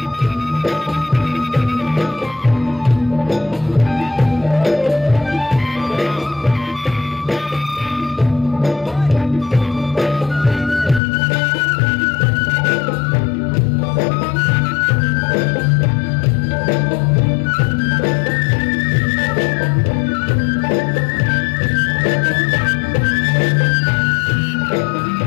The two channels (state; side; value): drops out; right; at 11.0 s